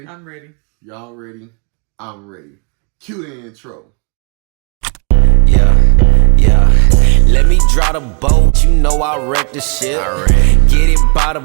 I'm ready. Y'all ready? I'm ready. Cue the intro. Yeah. Let me draw the boat. You know I wreck the shit. Get it by the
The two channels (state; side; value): quieter; left; 35.6 dB